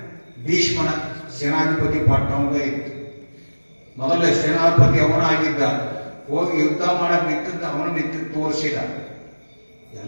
ಭೀಷ್ಮನ ಸೇನಾಧಿಪತಿ ಪಟ್ಟ ಅವನೇ ಇತ್ತು. ಮೊದಲೇ ಸೇನಾಧಿಪತಿ ಅವನಾಗಿದ್ದ. ಹೋಗಿ ಯುದ್ಧ ಮಾಡಕ್ ನಿಂತಿದ್ದು ತೋರಿಸಿದ.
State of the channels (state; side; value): inverted; both; correlation -1.00